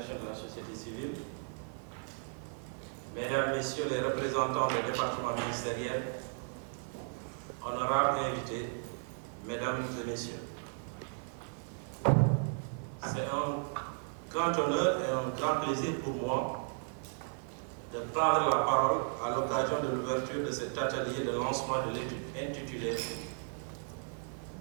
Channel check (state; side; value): silent; left; 54 dB below the other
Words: de la société civile, Mesdames, Messieurs les représentants des départements ministériels, honorables invités, Mesdames et Messieurs. C'est un grand honneur et un grand plaisir pour moi de prendre la parole à l'occasion de l'ouverture de cet atelier de lancement de l'étude intitulée